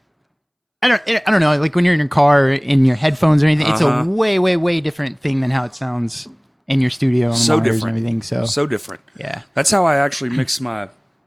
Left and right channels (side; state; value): both; identical; correlation 1.00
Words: I don't know. Like when you're in your car, in your headphones or anything, it's a way, way, way different thing than how it sounds in your studio and so monitors different. And everything. So different. Yeah. That's how I actually mix my